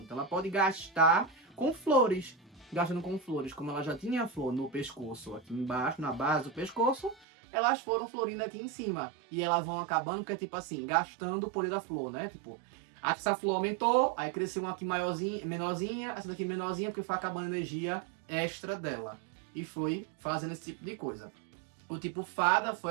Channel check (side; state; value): left; drops out; at 7.2 s